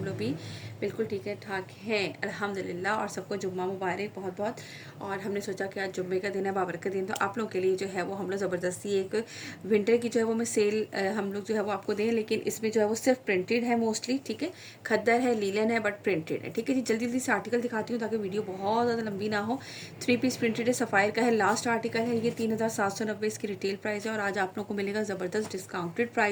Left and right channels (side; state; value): both; identical; correlation 1.00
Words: लोग भी बिल्कुल ठीक है ठाक हैं अल्हम्दुलिल्लाह। और सबको जुम्मा मुबारक बहुत बहुत। और हमने सोचा कि आज जुम्मे का दिन है, बाबर का दिन, तो आप लोगों के लिए जो है वो हम लोग ज़बरदस्ती एक विंटर की जो है वो मैं सेल हम लोग जो है वो आपको दें, लेकिन इसमें जो है वो सिर्फ प्रिंटेड है मोस्टली। ठीक है, खद्दर है, लीलन है, बट प्रिंटेड है। ठीक है जी, जल्दी जल्दी से आर्टिकल दिखाती हूँ ताकि वीडियो बहुत ज़्यादा लंबी ना हो। 3 पीस प्रिंटेड है, सफ़ायर का है, लास्ट आर्टिकल है ये। 3790 इसकी रिटेल प्राइस है और आज आप लोग को मिलेगा ज़बरदस्त डिस्काउंटेड